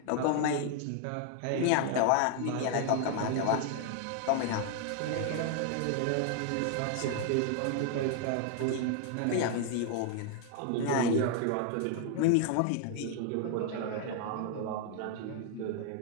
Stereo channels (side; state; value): both; different; correlation 0.00